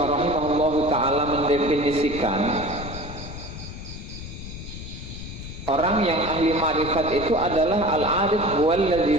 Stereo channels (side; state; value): left; noise; rumble, 10 dB below the sound